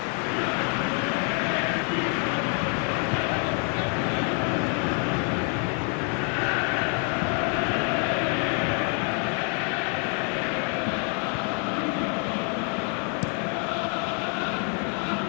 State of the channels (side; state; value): right; quieter; 39.4 dB